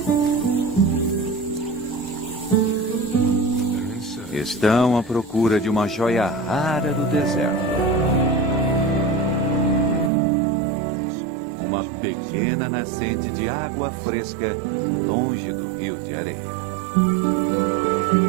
Estão à procura de uma joia rara do deserto. Uma pequena nascente de água fresca longe do Rio de Areia.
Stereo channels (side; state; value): left; drops out; at 10.1 s